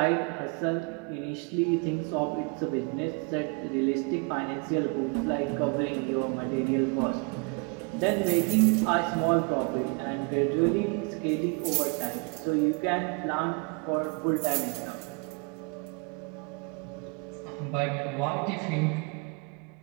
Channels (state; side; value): quieter; left; 32.7 dB